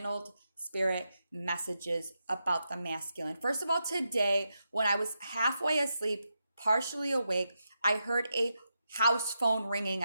spirit messages about the masculine. First of all, today, when I was halfway asleep, partially awake, I heard a house phone ringing.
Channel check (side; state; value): both; inverted; correlation -0.86